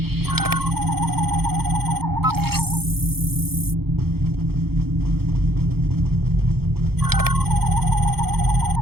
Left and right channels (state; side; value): late; left; 0.96 ms